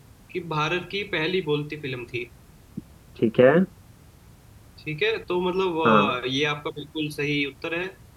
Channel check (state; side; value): identical; both; correlation 1.00